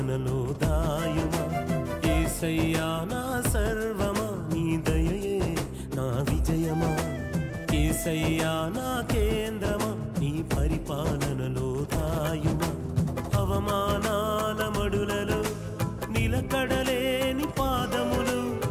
దాయుమా యేసయ్యా నా సర్వమా నీ దయయే నా విజయమా యేసయ్యా నా కేంద్రమా నీ పరిపాలనలో దాయుమా అవమానాల మడులలో నిలకడలేని పాదములు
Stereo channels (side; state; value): both; identical; correlation 1.00